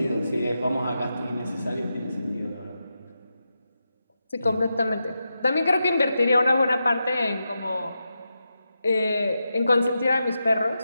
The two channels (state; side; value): inverted; both; correlation -0.88